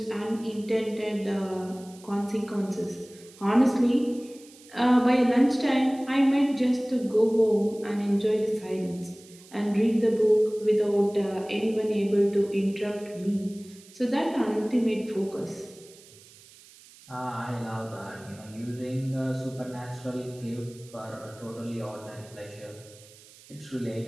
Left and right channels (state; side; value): noise; right; hiss, 23 dB below the sound